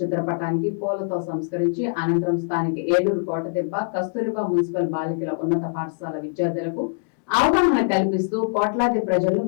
చిత్రపటానికి పూలతో సంస్కరించి అనంతరం స్థానిక ఏలూరు కోటదిబ్బ కస్తూరిబా మున్సిపల్ బాలికల ఉన్నత పాఠశాల విద్యార్థులకు అవగాహన కల్పిస్తూ కోట్లాది ప్రజలు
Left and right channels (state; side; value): silent; right; digital silence